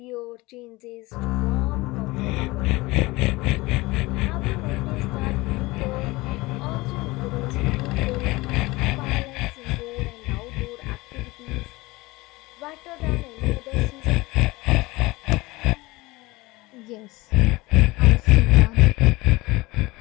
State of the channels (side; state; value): right; quieter; 21.6 dB